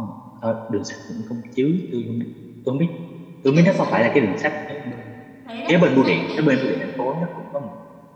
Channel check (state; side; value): identical; both; correlation 1.00